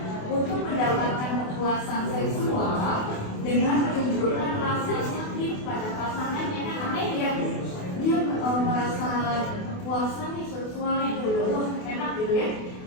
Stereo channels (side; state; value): right; late; 28 ms